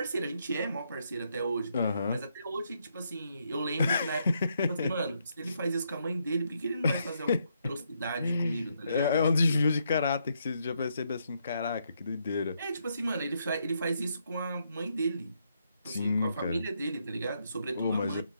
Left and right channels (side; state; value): both; inverted; correlation -0.77